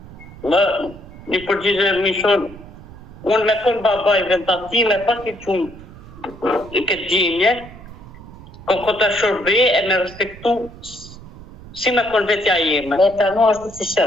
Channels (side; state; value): right; noise; rumble, 17 dB below the sound